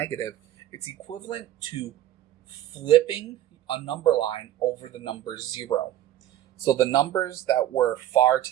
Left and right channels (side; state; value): left; quieter; 12.8 dB